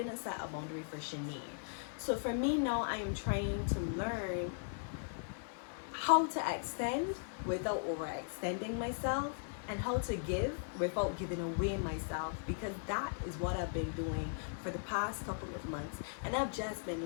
set a boundary for Shanae. So for me now, I am trying to learn how to extend without overextending myself and how to give without giving away myself, because that is what I've been doing for the past couple of months. And I've just been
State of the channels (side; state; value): right; silent; 52 dB below the other